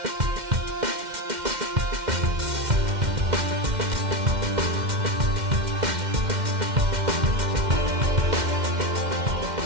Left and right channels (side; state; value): left; late; 2.1 ms